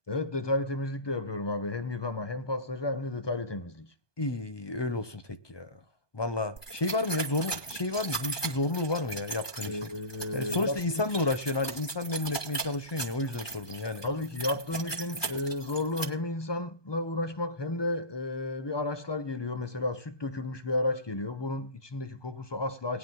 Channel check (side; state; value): right; late; 1.2 ms